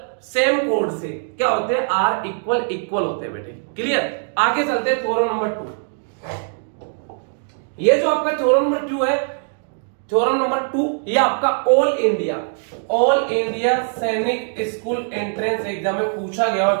सेम कोड से क्या होते हैं, आर इक्वल होते हैं बेटे, क्लियर। आगे चलते हैं थ्योरम नंबर 2। ये जो आपका थ्योरम नंबर 2 है, थ्योरम नंबर 2, ये आपका ऑल इंडिया सैनिक स्कूल एंट्रेंस एग्जाम में पूछा गया है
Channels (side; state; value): left; silent; 64 dB below the other